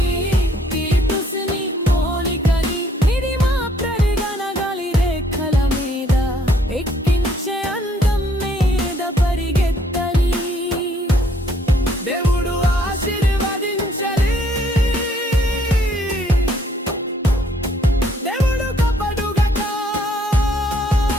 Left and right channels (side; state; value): both; normal; correlation 0.65